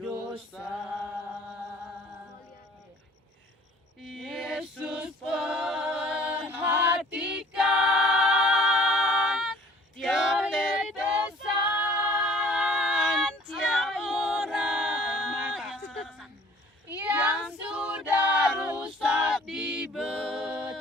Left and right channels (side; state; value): both; normal; correlation 0.53